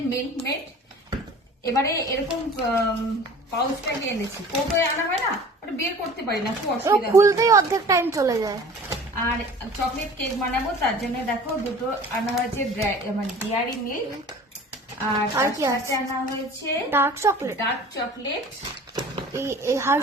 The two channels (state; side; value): normal; both; correlation 0.44